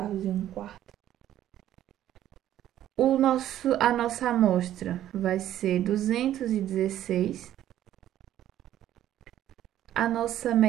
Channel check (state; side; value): quieter; left; 12.2 dB